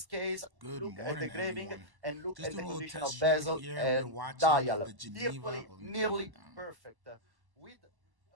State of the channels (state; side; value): late; left; 1.1 ms